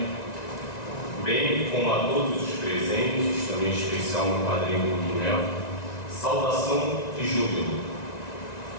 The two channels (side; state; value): right; late; 1.9 ms